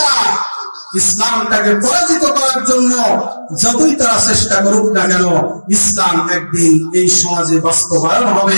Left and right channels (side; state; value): both; inverted; correlation -1.00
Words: ইসলামটাকে পরাজিত করার জন্য যতই তারা চেষ্টা করুক না কেন, ইসলাম একদিন এই সমাজে বাস্তবায়ন